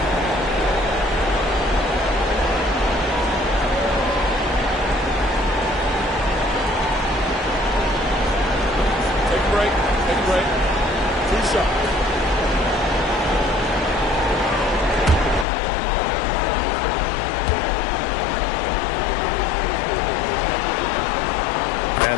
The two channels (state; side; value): drops out; right; at 15.5 s